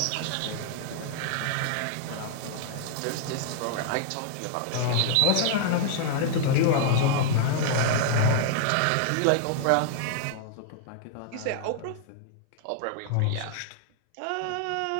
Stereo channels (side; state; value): both; different; correlation -0.01